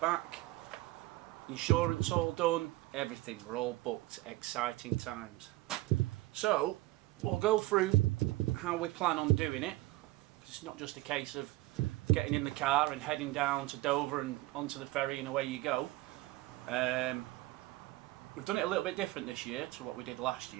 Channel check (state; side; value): quieter; left; 18.8 dB